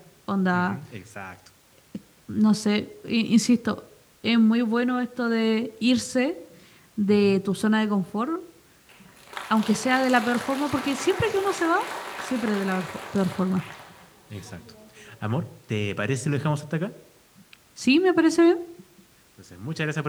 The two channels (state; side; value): identical; both; correlation 1.00